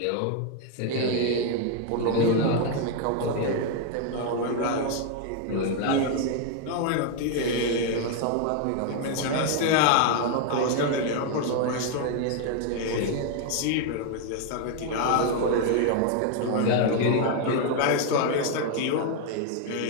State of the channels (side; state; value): both; different; correlation 0.01